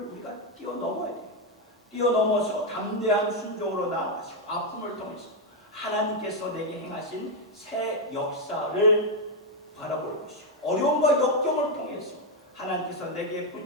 우리가 뛰어넘어야 돼요. 뛰어넘어서 담대한 순종으로 나아가시고 아픔을 통해서 하나님께서 내게 행하신 새 역사를 바라볼 것이고 어려움과 역경을 통해서 하나님께서 내게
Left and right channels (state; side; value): normal; both; correlation 0.02